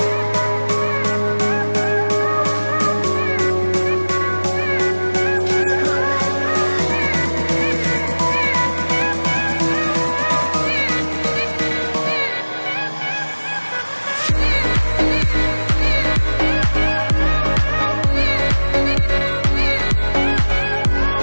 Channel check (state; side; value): inverted; both; correlation -1.00